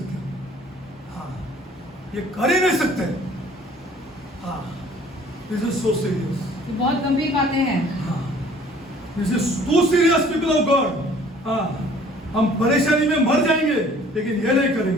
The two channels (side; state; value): both; normal; correlation 0.54